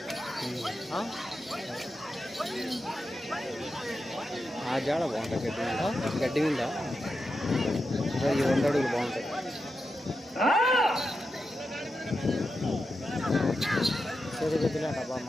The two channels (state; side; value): normal; both; correlation 0.88